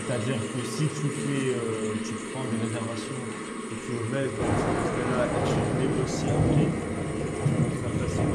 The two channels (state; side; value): identical; both; correlation 1.00